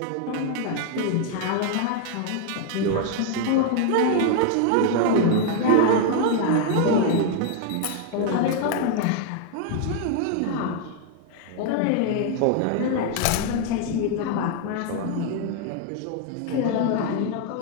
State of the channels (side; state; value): both; different; correlation 0.01